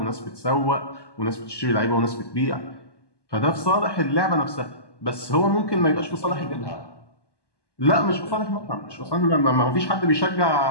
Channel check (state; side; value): late; right; 1.1 ms